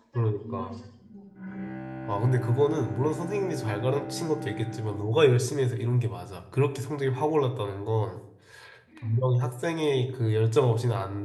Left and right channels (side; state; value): both; identical; correlation 1.00